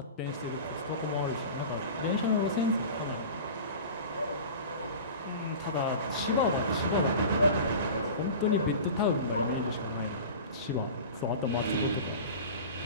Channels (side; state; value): both; inverted; correlation -0.35